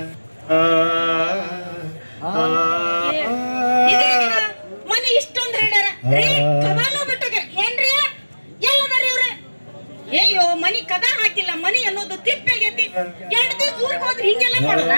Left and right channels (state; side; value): inverted; both; correlation -1.00